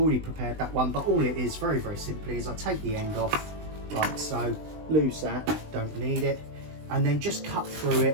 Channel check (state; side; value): late; left; 20 ms